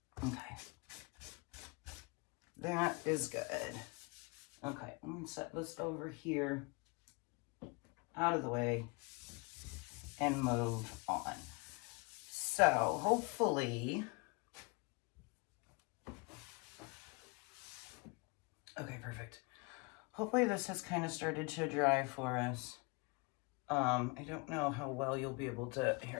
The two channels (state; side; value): quieter; right; 29.4 dB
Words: road. Okay. That is good. Okay, I'm gonna set this over here, out of the way, and move on. So hopefully, okay, perfect. Hopefully this has kind of started to dry for us. I don't know how well you'll be able to,